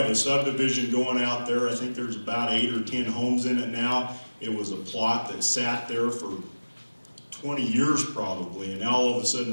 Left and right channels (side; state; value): both; inverted; correlation -1.00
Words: a subdivision going out there. I think there's about 8 or 10 homes in it now. It was a plot that sat there for 20 years probably, and now all of a sudden